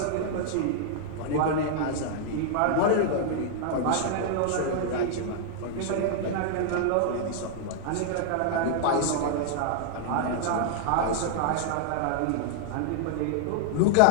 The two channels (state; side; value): different; both; correlation 0.00